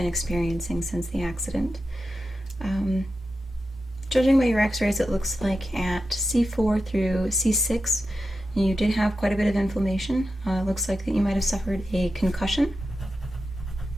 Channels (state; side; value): normal; both; correlation 0.90